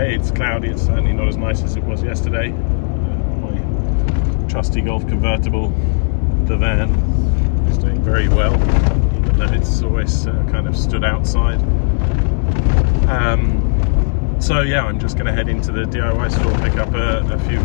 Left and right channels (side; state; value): right; silent; 58 dB below the other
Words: It's cloudy. It's certainly not as nice as it was yesterday. My trusty Golf convertible, the van, is doing very well, even though it's always kind of stood outside. So yeah, I'm just going to head into the DIY store, pick up a few